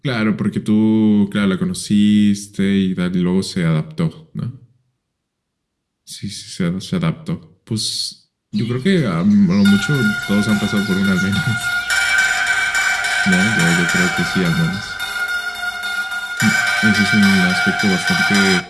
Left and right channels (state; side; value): identical; both; correlation 1.00